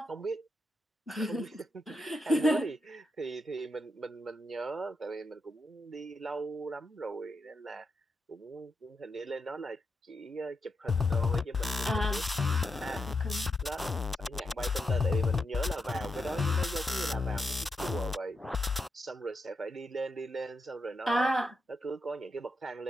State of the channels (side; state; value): both; normal; correlation 0.85